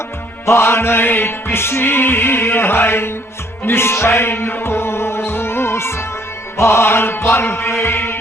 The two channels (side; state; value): both; normal; correlation 0.64